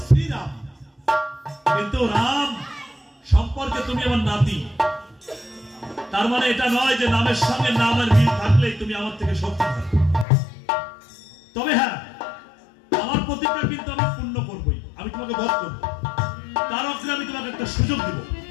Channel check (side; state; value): right; drops out; at 10.2 s